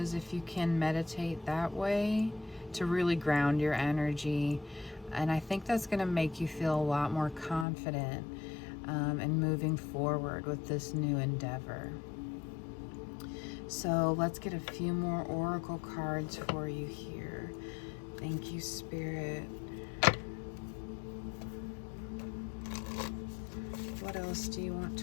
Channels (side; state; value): right; drops out; at 7.7 s